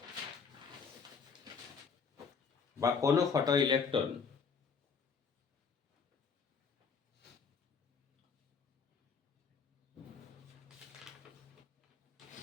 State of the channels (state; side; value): quieter; right; 5.6 dB